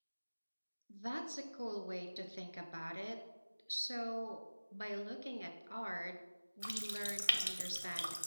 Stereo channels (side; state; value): both; inverted; correlation -1.00